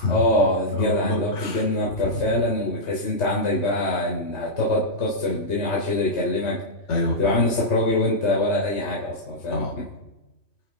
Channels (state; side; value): late; right; 3.2 ms